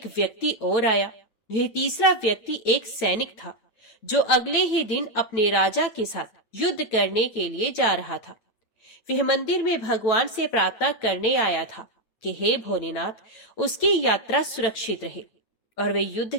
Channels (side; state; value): right; late; 9.0 ms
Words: व्यक्ति और आया। यह तीसरा व्यक्ति एक सैनिक था जो अगले ही दिन अपने राजा के साथ युद्ध करने के लिए जा रहा था। वह मंदिर में भगवान से प्रार्थना करने आया था कि हे भोलेनाथ, उसकी यात्रा सुरक्षित रहे और वे युद्ध